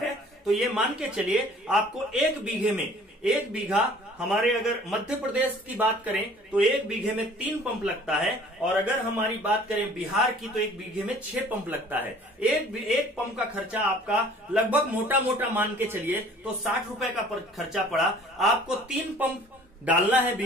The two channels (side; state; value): both; normal; correlation 0.51